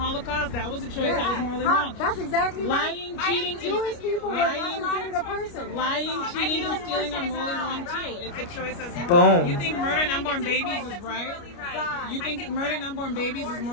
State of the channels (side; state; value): right; late; 29 ms